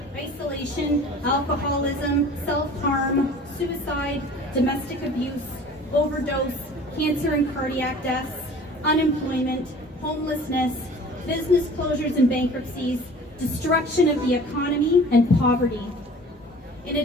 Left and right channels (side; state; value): both; normal; correlation 0.45